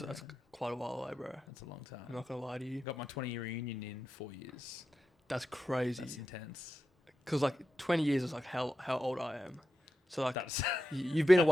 quite a while away, bro. That's a long time. I'm not gonna lie to you. Got my 20-year reunion in 4 years. That's crazy. That's intense. Because 20 years is how old I am. So you've been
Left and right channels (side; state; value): both; normal; correlation 0.90